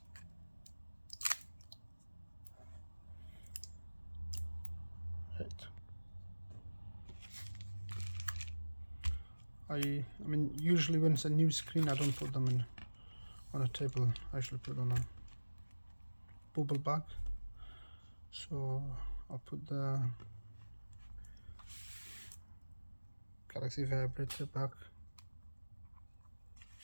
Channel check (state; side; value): inverted; both; correlation -1.00